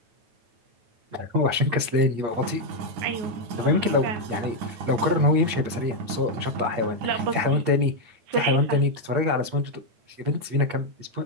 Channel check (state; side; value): late; left; 8.6 ms